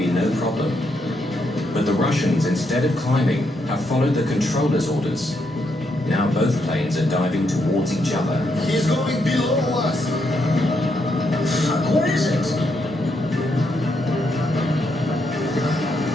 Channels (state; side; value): normal; both; correlation 0.78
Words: no problem. But the Russians, instead of climbing, have followed the controller's orders. Now both planes are diving towards each other. He's going below us. What is it?